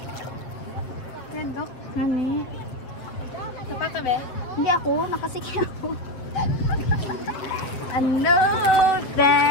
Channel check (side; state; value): right; late; 8.0 ms